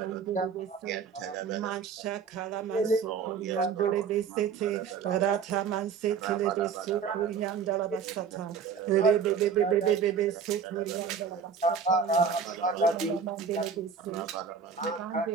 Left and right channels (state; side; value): quieter; left; 6.4 dB